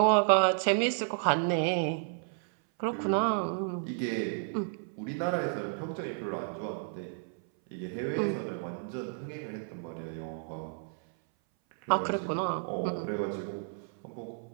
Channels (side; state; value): left; silent; 57 dB below the other